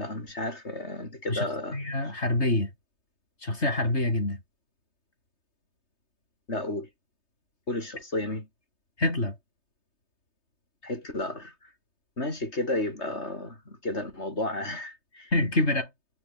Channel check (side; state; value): right; late; 3.3 ms